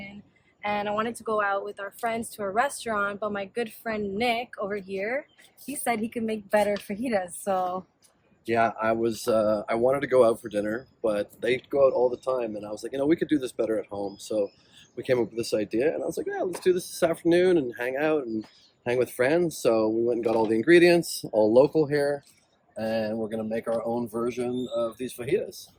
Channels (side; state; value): both; identical; correlation 1.00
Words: and I wanted to go out with our friends to a restaurant, but my good friend Nick over here, he said he could make better fajitas. So yeah, I wanted to go out for dinner, but they go out all the time, and I was like, we could do this better at home. So we came up with this idea, and I was like, yeah, let's do this afternoon and hang out and hang with friends. So we went and got all the ingredients, all local here, and we're gonna make our own version of these fajitas.